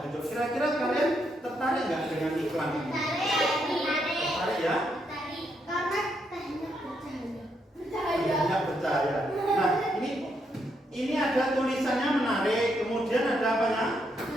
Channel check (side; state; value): both; normal; correlation 0.78